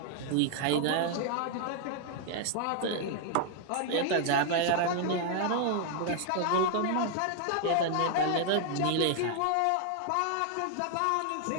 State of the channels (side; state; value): both; different; correlation 0.00